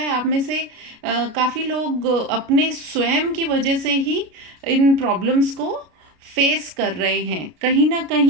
आप में से काफ़ी लोग अपने स्वयं की वजह से ही इन प्रॉब्लम्स को फेस कर रहे हैं। कहीं ना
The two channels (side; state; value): left; late; 33 ms